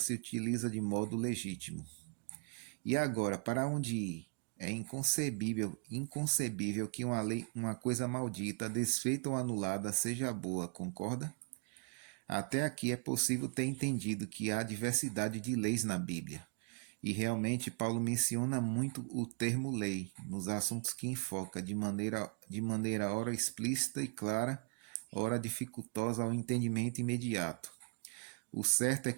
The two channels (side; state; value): left; quieter; 39.8 dB